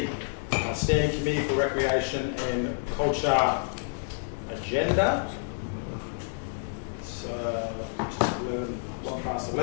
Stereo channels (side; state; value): right; silent; digital silence